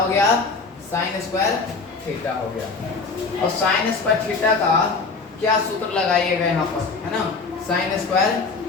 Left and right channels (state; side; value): quieter; right; 4.4 dB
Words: गया? साइन स्क्वायर थीटा हो गया। और साइन स्क्वायर थीटा का क्या सूत्र लगाइएगा यहाँ पर, है ना? साइन स्क्वायर